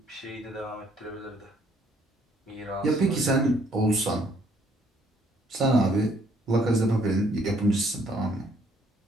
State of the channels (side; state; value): both; normal; correlation 0.65